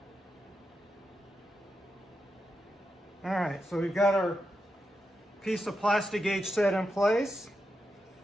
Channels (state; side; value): normal; both; correlation 0.87